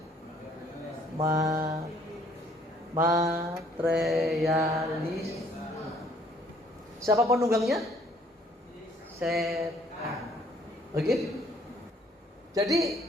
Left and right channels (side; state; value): both; normal; correlation 0.62